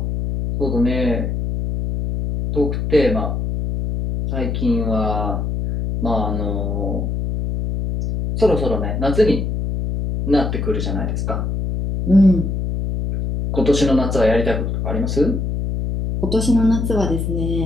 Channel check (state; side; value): noise; left; hum, 2 dB below the sound